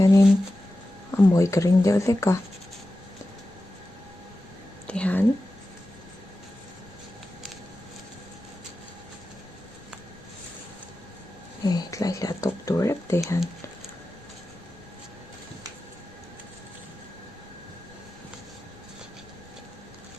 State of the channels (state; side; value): noise; left; rumble, 27 dB below the sound